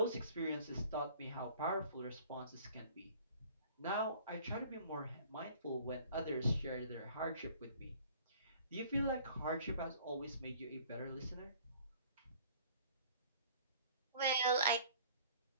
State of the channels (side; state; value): both; inverted; correlation -0.52